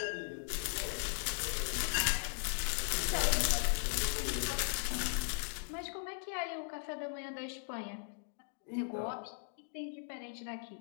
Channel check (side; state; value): right; silent; digital silence